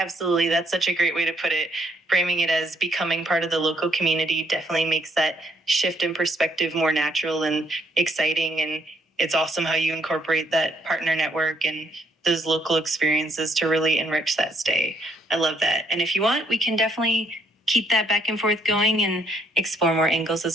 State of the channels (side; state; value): both; normal; correlation 0.69